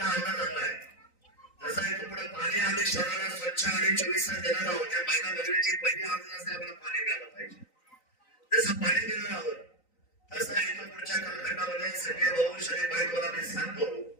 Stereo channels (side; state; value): right; late; 3.9 ms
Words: अंदाज आणलाय जसं इथून पुढे पाणी आम्ही शहराला स्वच्छ आणि 24 तास देणार आहोत. त्या महिला भगिनीची पहिली आर्ज असते आपल्याला पाणी मिळालं पाहिजे. जसं पाणी देणार आहोत तसं इथून पुढच्या कालखंडामध्ये सगळे भाऊ शरीर बाईकवाला मी सांगतो